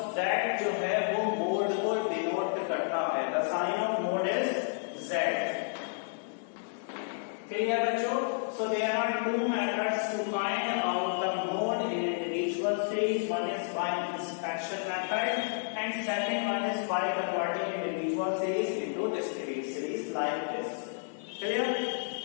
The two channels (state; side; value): silent; right; 57 dB below the other